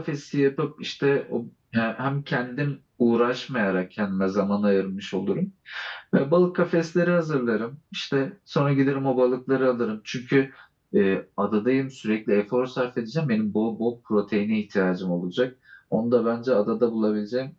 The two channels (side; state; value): both; identical; correlation 1.00